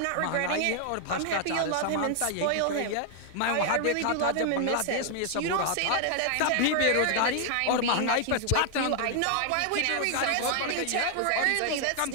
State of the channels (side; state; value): both; different; correlation 0.00